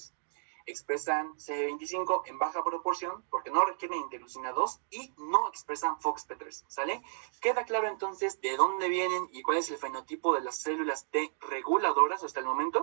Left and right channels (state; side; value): silent; left; digital silence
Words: expresan CD25 en baja proporción, porque no requieren interleucina 2, y no expresan FOXP3, ¿sale? ¿Queda claro entonces de dónde vienen y cuál es el fenotipo de las células T reguladoras hasta el